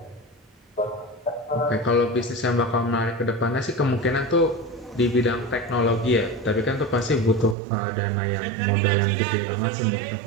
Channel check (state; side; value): drops out; left; at 7.6 s